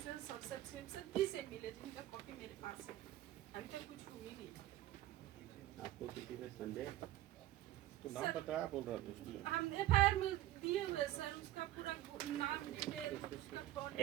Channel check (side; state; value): left; quieter; 14.4 dB